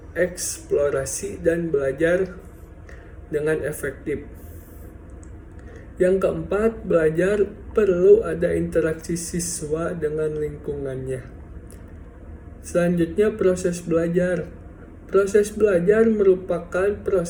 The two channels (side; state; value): both; identical; correlation 1.00